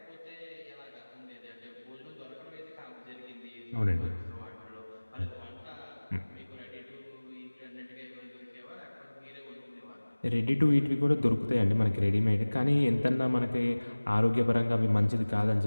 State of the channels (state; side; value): inverted; both; correlation -1.00